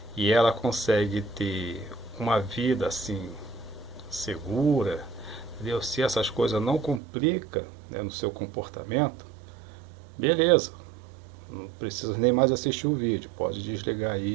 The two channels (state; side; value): drops out; left; at 7.0 s